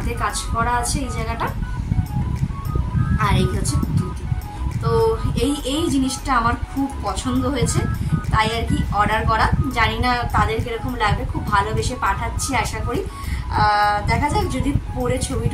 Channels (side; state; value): both; identical; correlation 1.00